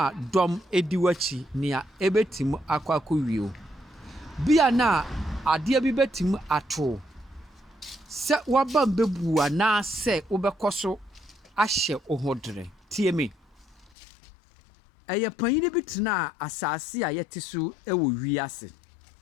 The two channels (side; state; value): right; drops out; at 13.9 s